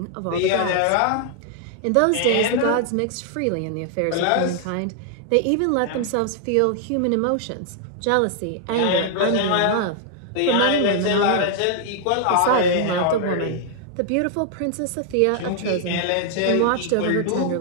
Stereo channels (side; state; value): both; different; correlation 0.00